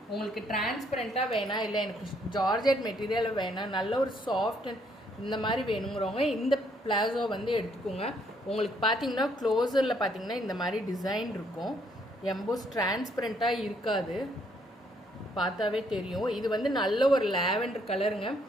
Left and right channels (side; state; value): both; normal; correlation 0.69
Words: உங்களுக்கு டிரான்ஸ்பரண்ட்டாக வேணாம், இல்லை எனக்கு ஜார்ஜெட் மெட்டீரியல் வேணாம், நல்ல ஒரு சாஃப்ட் இந்த மாதிரி வேணுங்கிறவங்க இந்த பிளாசோ வந்து எடுத்துக்கோங்க. உங்களுக்கு பார்த்தீங்கன்னா க்ளோஸரில் பார்த்தீங்கன்னா இந்த மாதிரி டிசைன் இருக்கும். எம்போஸ் டிரான்ஸ்பரண்ட்டாக இருக்காது, பார்த்தாவே தெரியும். இது வந்து நல்ல ஒரு லாவெண்டர் கலருங்க.